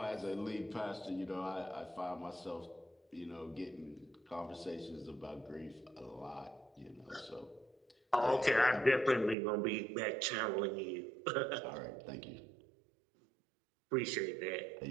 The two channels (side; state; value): left; drops out; at 9.3 s